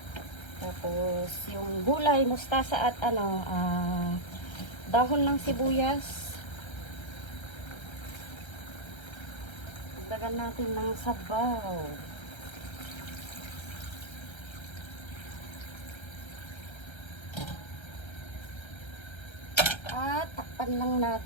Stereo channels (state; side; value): late; right; 1.3 ms